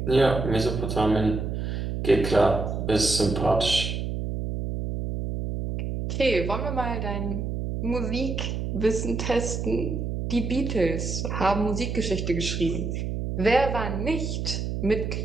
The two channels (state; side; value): noise; right; hum, 3 dB below the sound